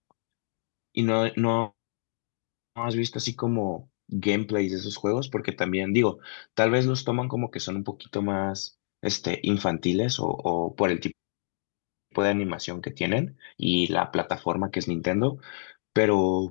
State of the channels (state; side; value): silent; right; digital silence